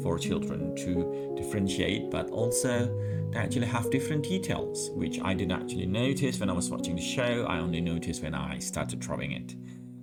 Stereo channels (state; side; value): identical; both; correlation 1.00